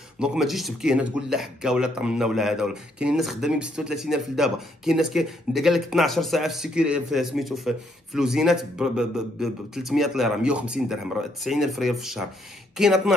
دونك ما تجيش تبكي هنا تقول لا حكا ولا طمنا ولا هذا ولا. كاين الناس خدامين ب 36000 لدابا. كاين الناس قال لك 12 ساعه في السيكوري في سميتو في لوزينات ب 300 ليره 150 درهم 90000 ريال في الشهر. كاين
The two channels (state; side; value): normal; both; correlation 0.72